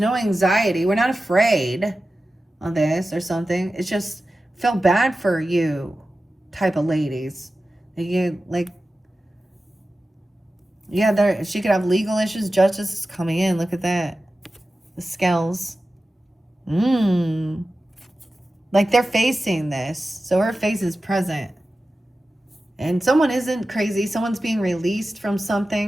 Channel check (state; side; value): normal; both; correlation 0.94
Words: anxiety. We're not afraid of this or something. It's just feel bad for you type of ladies. You like, yeah, there she could have legal issues. Justice is coming in. Look at that. The scales. Like they're facing this. So her face is present. And someone isn't crazy. Someone's being released from